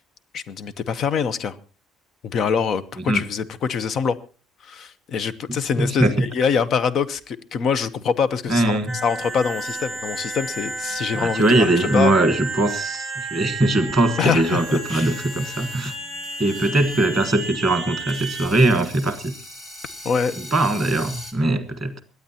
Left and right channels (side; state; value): both; normal; correlation 0.70